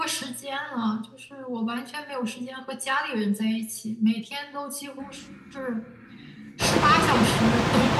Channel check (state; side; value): identical; both; correlation 1.00